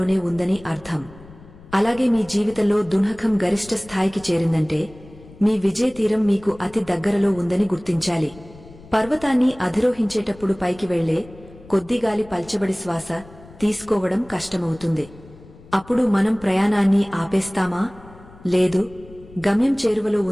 ఉందని అర్థం. అలాగే మీ జీవితంలో దుంహకం గరిష్ట స్థాయికి చేరిందంటే మీ విజయతీరం మీకు అతి దగ్గరలో ఉందని గుర్తించాలి. పర్వతాన్ని అధిరోహించేటప్పుడు పైకి వెళ్లే కొద్దిగాలి పల్చబడి శ్వాస తీసుకోవడం కష్టమవుతుంది. అప్పుడు మనం ప్రయాణాన్ని ఆపేస్తామా? లేదు, గమ్యం చేరువలో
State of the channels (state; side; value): noise; left; rumble, 21 dB below the sound